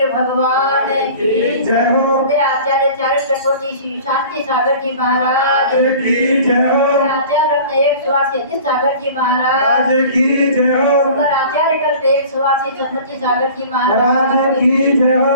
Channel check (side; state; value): both; inverted; correlation -0.43